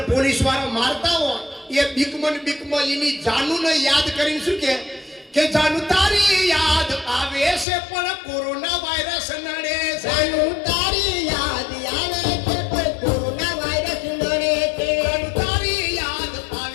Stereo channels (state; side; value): drops out; right; at 7.7 s